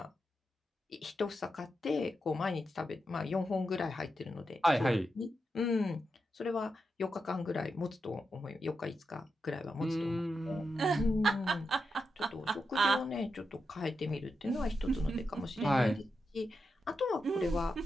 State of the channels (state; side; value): normal; both; correlation 0.87